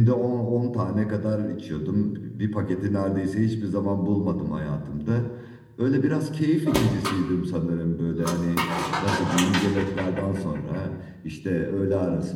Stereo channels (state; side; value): identical; both; correlation 1.00